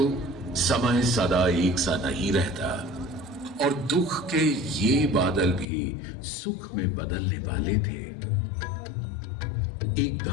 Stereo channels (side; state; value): right; drops out; at 5.7 s